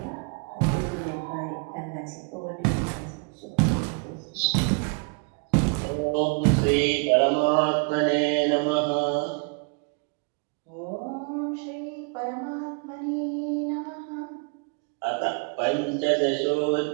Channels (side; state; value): left; quieter; 34.9 dB